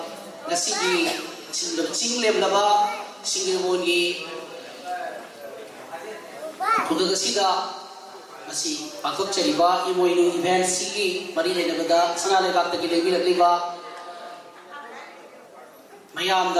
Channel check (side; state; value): both; identical; correlation 1.00